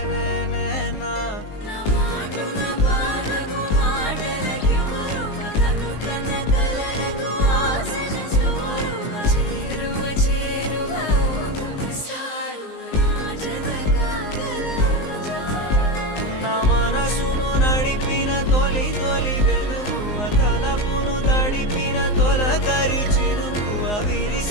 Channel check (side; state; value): right; late; 19 ms